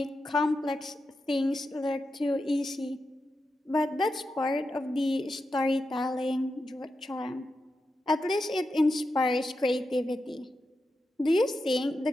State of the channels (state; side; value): normal; both; correlation 0.89